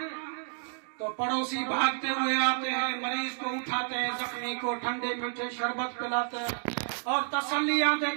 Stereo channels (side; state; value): left; silent; digital silence